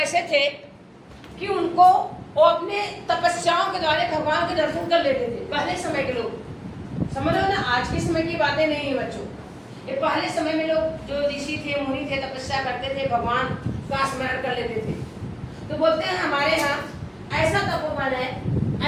थे कि उनको वो अपने तपस्याओं के द्वारा भगवान के दर्शन कर लेते थे। पहले समय के लोग, समझ लो ना, आज के समय की बातें नहीं है बच्चों। ये पहले समय में लोग जो ऋषि थे मुनि थे तपस्या करते थे, भगवान का स्मरण कर लेते थे। तो बोलते हैं हमारे यहाँ ऐसा तपोवन है,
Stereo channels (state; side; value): identical; both; correlation 1.00